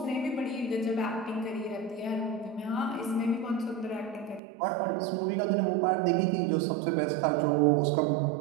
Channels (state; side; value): drops out; left; at 4.4 s